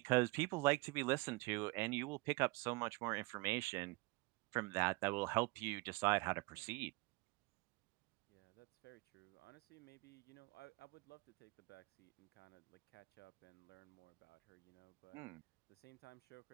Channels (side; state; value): left; quieter; 24.8 dB